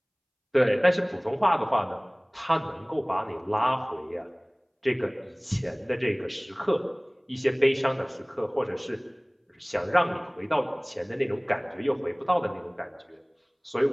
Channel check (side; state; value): both; identical; correlation 1.00